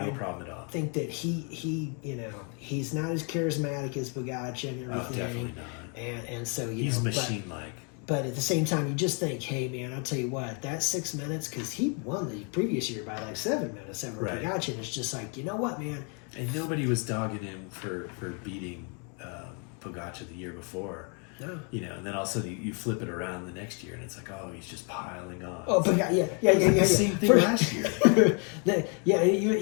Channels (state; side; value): quieter; right; 37.8 dB